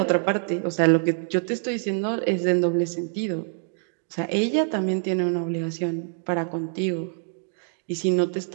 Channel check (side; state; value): left; silent; digital silence